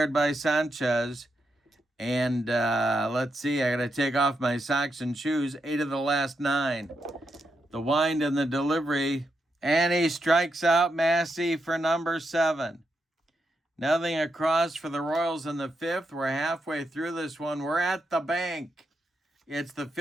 by Sanchez. And let's see, I got to take off my socks and shoes. 8 of the last 9. The wind and the delivery. And he strikes out Massey for number 7. Nothing across for the Royals in the 5th. We're halfway through this one. We're at the bank. It's the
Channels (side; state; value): both; normal; correlation 0.83